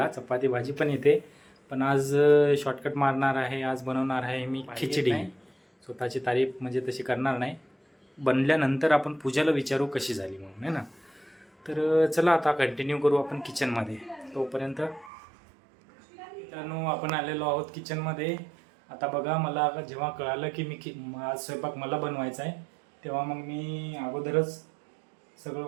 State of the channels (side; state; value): left; drops out; at 15.1 s